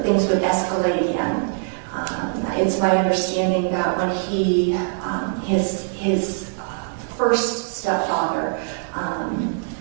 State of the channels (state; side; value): silent; left; digital silence